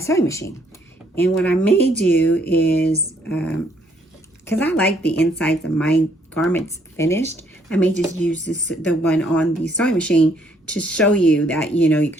machine. And what I may do is, because I like the insides of my garments finished, I may just use the one on the sewing machine to show you that, you know, you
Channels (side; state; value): both; normal; correlation 0.67